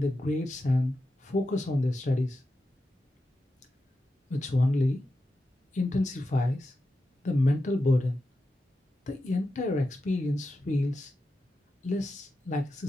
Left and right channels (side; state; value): both; normal; correlation 0.90